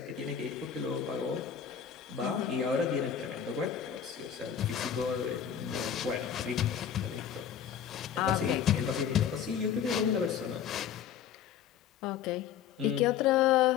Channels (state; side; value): quieter; right; 8.5 dB